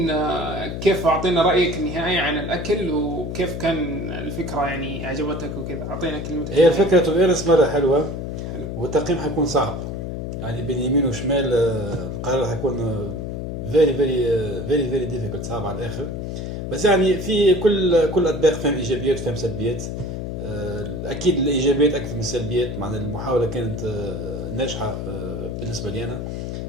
كيف اعطينا رايك النهائي عن الاكل وكيف كان الفكره يعني عجبتك وكذا. اعطينا كلمتك. هي الفكره تو بيونس مره حلوه والتقييم حيكون صعب يعني بين يمين وشمال. القرار حيكون فيري ديفيكولت صعب على الاخر. بس يعني في كل اطباق فيهم ايجابيات وفيهم سلبيات. اكيد الايجابيات اكثر من السلبيات. مع المحاوله كانت ناجحه بالنسبه لي انا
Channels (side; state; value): left; noise; hum, 5 dB below the sound